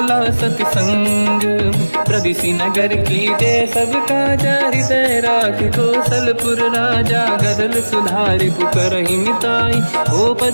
ला सति संग। प्रदिशि नगर की दे सब काजा हृदय राख कौशलपुर राजा। गदल सुधारि पुकरहि मिताई ओ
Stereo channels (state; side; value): inverted; both; correlation -1.00